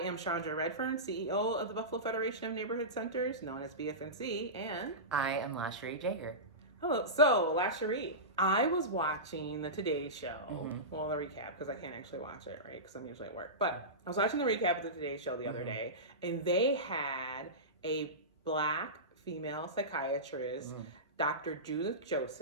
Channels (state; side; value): normal; both; correlation -0.19